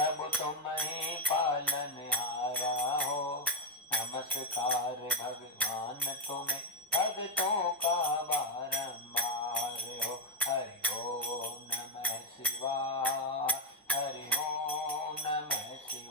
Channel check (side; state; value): both; normal; correlation 0.03